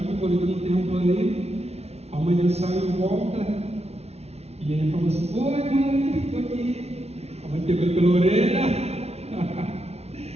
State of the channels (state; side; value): late; left; 0.31 ms